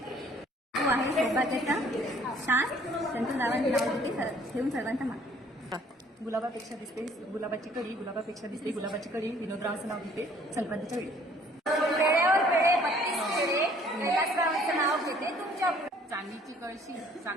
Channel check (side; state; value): both; normal; correlation 0.58